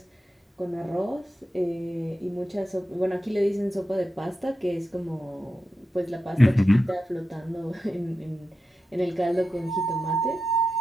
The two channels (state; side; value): normal; both; correlation 0.91